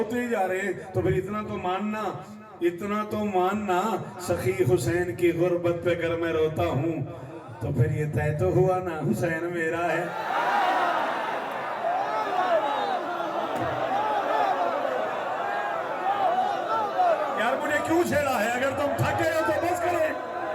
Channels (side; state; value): both; identical; correlation 1.00